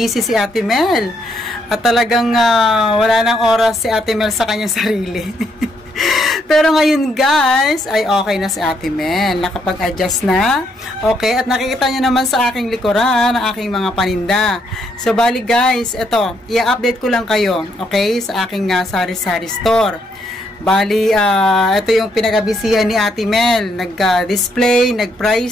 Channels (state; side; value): normal; both; correlation 0.74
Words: si Ate Mel. At talagang wala nang oras si Ate Mel sa kanyang sarili. Pero ngayon guys, ay okay na si Ate Mel. Nakapag-adjust na. Okay, at nakikita nyo naman sa aking likuran ang aking mga paninda. So bali guys, ito, i-update ko lang kayo, okay, sa aking sari-sari store. Bali, ito yung pinag-abisihan ni Ate Mel. Nag-display,